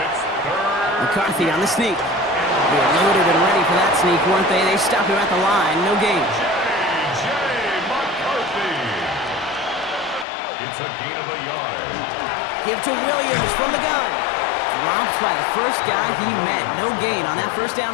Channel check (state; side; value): drops out; right; at 10.2 s